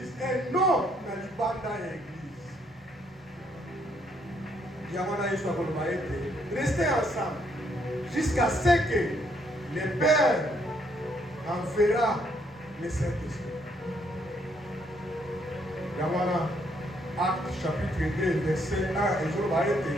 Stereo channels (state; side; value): normal; both; correlation 0.71